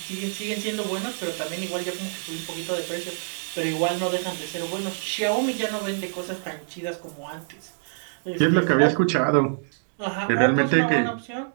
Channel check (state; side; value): silent; left; digital silence